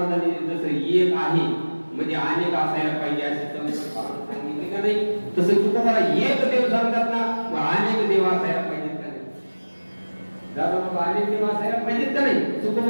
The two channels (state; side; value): inverted; both; correlation -1.00